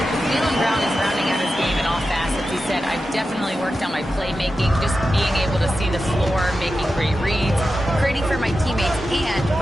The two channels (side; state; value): both; normal; correlation 0.91